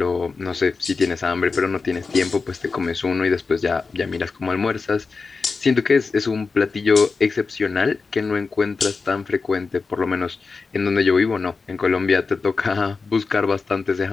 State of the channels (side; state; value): right; quieter; 4.5 dB